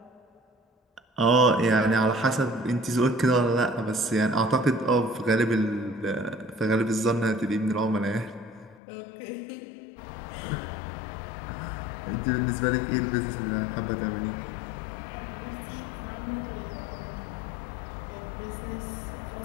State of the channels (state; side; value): drops out; right; at 8.8 s